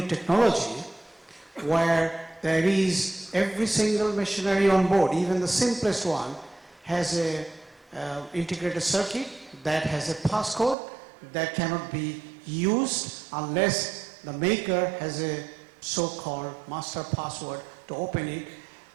technology, where there is every single machinery on board, even the simplest one, has a integrated circuit that has a passcode that cannot be used unless the maker has a so-called master password to open it.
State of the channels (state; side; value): drops out; left; at 10.8 s